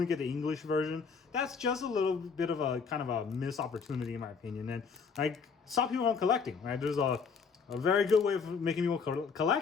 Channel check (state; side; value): quieter; right; 5.6 dB